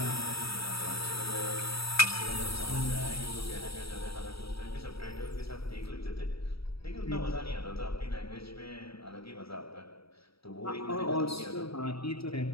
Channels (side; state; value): right; late; 0.76 ms